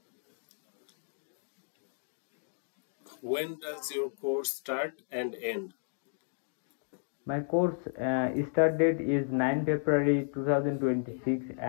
When does your course start and end? My course start date is 9 February 2026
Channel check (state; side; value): silent; right; digital silence